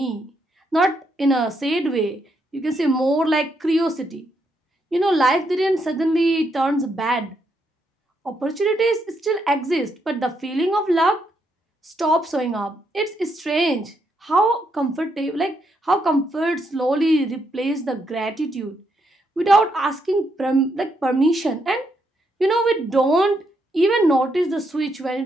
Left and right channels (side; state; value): both; normal; correlation 0.78